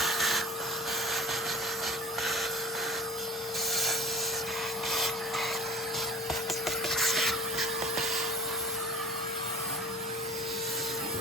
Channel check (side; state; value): both; normal; correlation 0.39